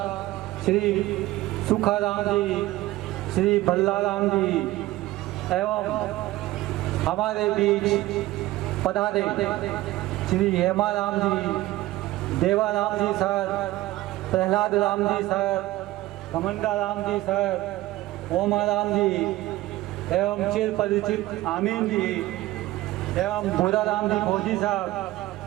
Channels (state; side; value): quieter; left; 17.2 dB